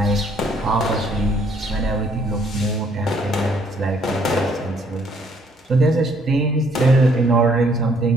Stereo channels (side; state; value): both; normal; correlation 0.65